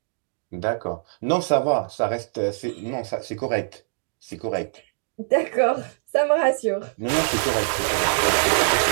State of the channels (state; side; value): silent; left; digital silence